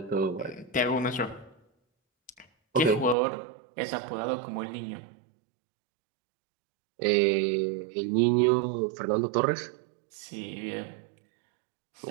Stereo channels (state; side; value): drops out; left; at 3.2 s